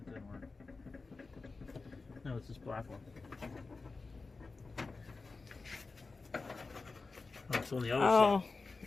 didn't work. No, it's this black one. Oh, it's on the other side.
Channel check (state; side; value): quieter; right; 3.9 dB